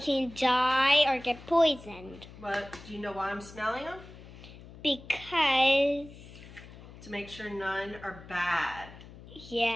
can die or get poisoned. But do you know why I'm smelling them? Because... To make sure none are bad.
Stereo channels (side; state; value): left; noise; hum, 18 dB below the sound